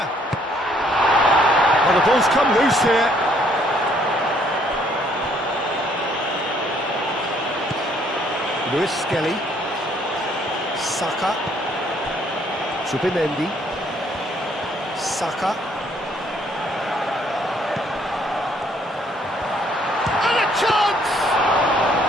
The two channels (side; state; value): both; normal; correlation 0.65